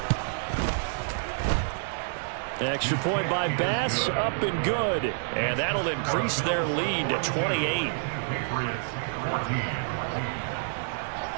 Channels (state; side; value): silent; left; digital silence